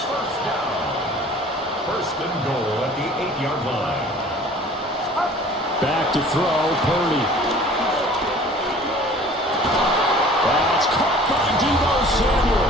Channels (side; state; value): both; normal; correlation 0.48